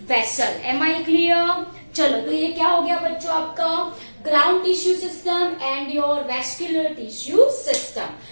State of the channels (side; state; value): both; inverted; correlation -1.00